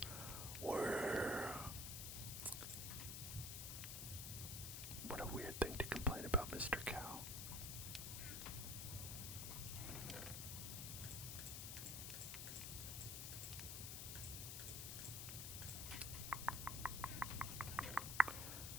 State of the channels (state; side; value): noise; left; hiss, 4 dB below the sound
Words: Whoa." What a weird thing to complain about, Mr. Cow.